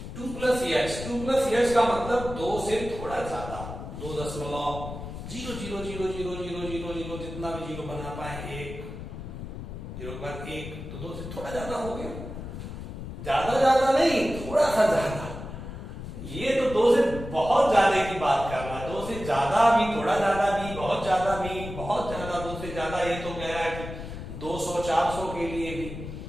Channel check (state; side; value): noise; left; rumble, 9 dB below the sound